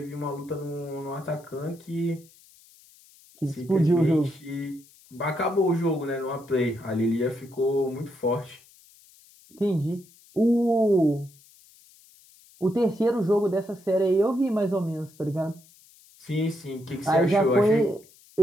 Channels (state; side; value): noise; left; hiss, 27 dB below the sound